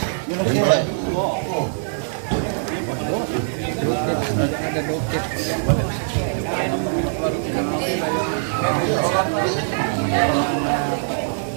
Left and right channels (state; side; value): silent; left; digital silence